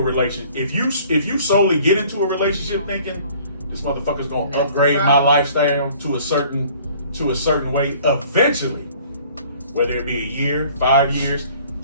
relationship, if you solely get into a relationship thinking this motherfucker's going to upgrade my lifestyle to a certain way eventually, whether it be a year, 5 years,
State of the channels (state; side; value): inverted; both; correlation -0.54